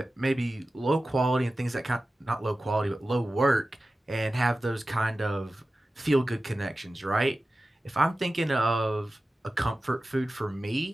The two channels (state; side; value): normal; both; correlation 0.95